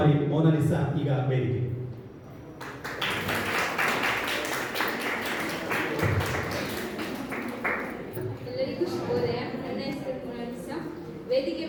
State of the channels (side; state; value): both; identical; correlation 1.00